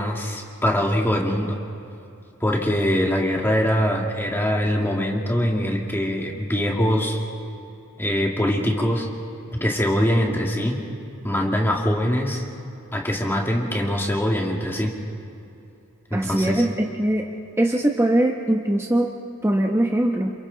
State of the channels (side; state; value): both; normal; correlation 0.83